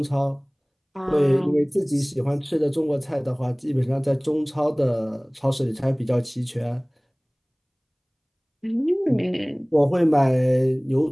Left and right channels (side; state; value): both; identical; correlation 1.00